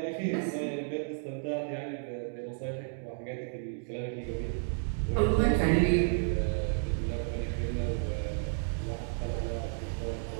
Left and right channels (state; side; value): silent; left; digital silence